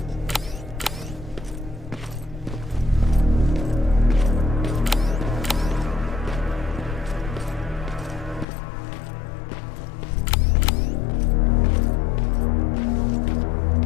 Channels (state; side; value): drops out; right; at 8.5 s